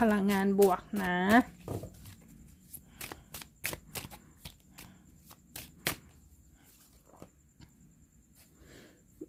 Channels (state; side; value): identical; both; correlation 1.00